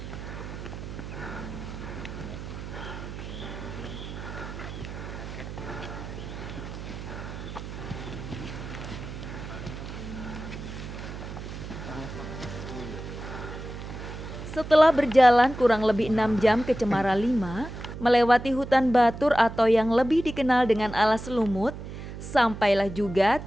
Setelah berjalan kurang lebih 6 jam ke Cemara 5, melewati hutan batur atau yang lebih dikenal dengan alas lumut, sampailah juga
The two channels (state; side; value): noise; right; hum, 10 dB below the sound